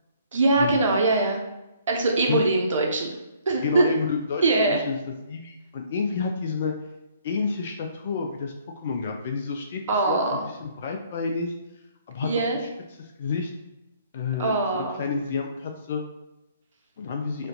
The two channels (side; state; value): both; inverted; correlation -0.61